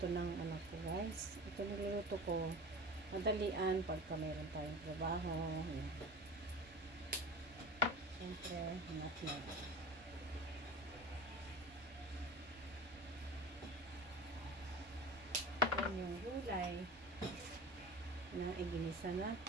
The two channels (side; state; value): both; normal; correlation 0.34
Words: ng anak ko guys. Ito niluluto ko. Madalian pagka meron tayong trabaho. Ayan. Siyempre, nutmeg. Yan yung gulay na iginisa